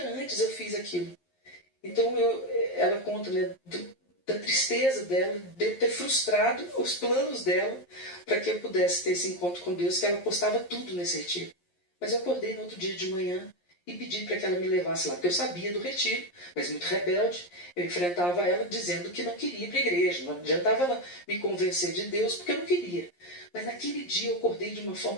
antes eu fiz aquilo. Então ela conta, né, da tristeza dela, de eu ter frustrado os planos dela para que eu pudesse ter esse encontro com Deus, que ela postava tudo nesse retiro. Mas eu acordei no outro dia de manhã e pedi para que ela me levasse lá, porque eu sabia do retiro, mas muito rebelde, eu enfrentava ela dizendo que não queria ir para a igreja, não adiantava ela me convencer de Deus, porque eu não queria. Mas naquele dia eu acordei de uma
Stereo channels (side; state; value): right; late; 11 ms